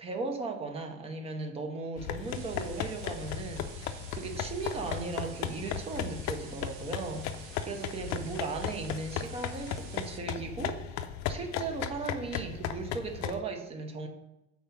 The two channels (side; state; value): both; normal; correlation 0.19